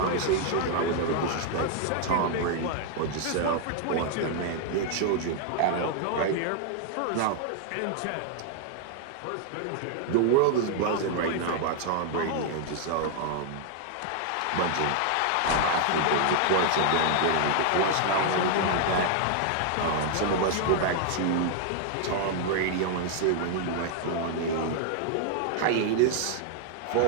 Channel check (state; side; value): different; both; correlation 0.00